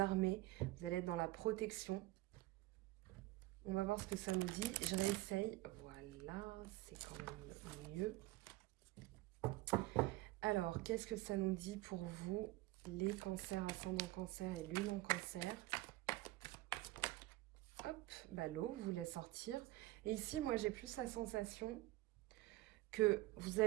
vous allez être dans la protection. On va voir ce que ça nous dit. Je réessaye. Voilà, c'est quand même mieux. Alors, qu'est-ce que ça nous dit pour vous, les cancers, ascendant cancer et lune en cancer? Hop, bah l'eau voulait sortir. Et ici, moi, j'ai plus la sensation que vous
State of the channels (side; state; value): left; quieter; 18.5 dB